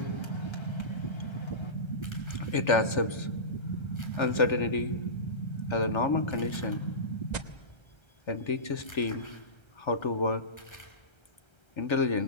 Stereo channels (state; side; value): late; right; 1.3 ms